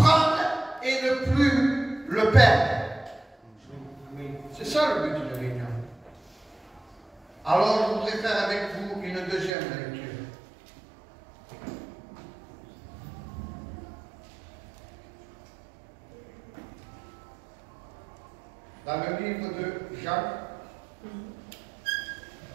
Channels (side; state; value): left; drops out; at 9.5 s